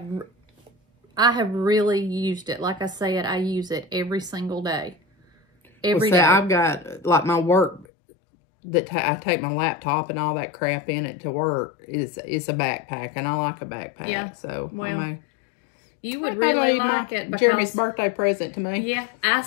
have really used it. Like I said, I use it every single day. Every day. I've got, like, my work that I take my laptop and all that crap in it to work. It's a backpack, and I like a backpack. Yeah. So, well, you would really like it, because Jeremy's birthday present to me. Yeah, I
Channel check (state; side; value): drops out; right; at 7.9 s